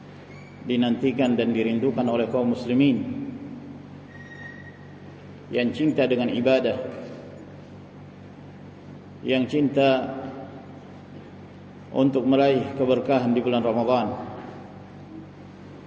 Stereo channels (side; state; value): both; identical; correlation 1.00